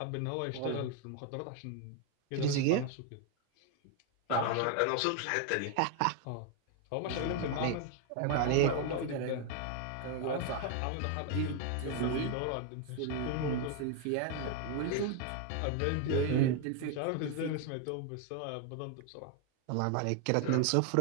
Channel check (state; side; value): different; both; correlation 0.01